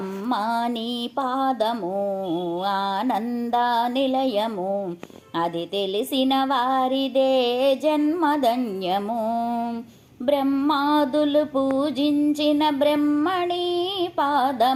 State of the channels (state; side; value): identical; both; correlation 1.00